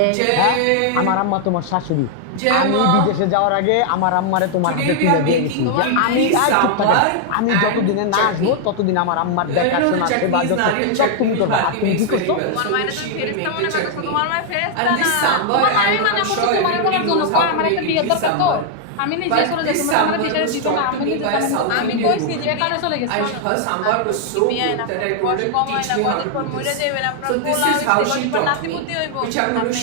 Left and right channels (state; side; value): different; both; correlation 0.00